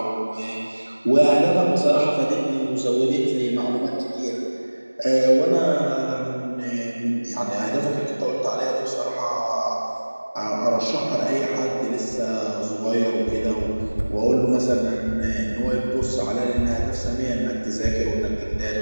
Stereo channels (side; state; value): both; inverted; correlation -1.00